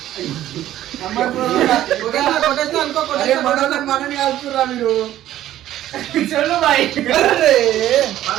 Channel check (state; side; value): quieter; left; 13.0 dB